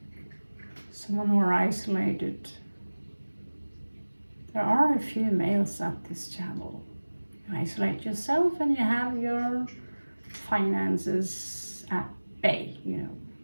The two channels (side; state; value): both; inverted; correlation -1.00